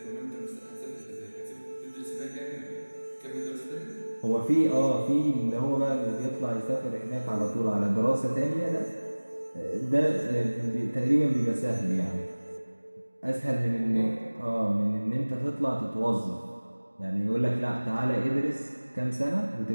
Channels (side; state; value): both; inverted; correlation -1.00